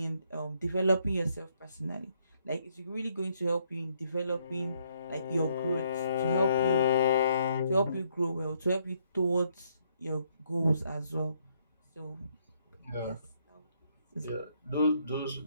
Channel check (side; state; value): both; inverted; correlation -0.72